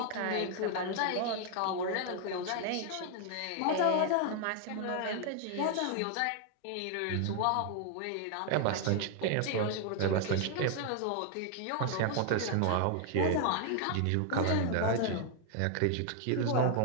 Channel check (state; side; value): different; both; correlation 0.00